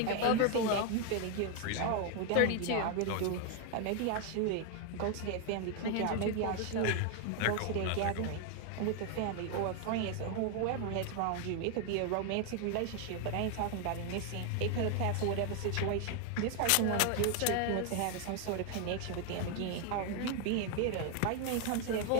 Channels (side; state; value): both; different; correlation 0.00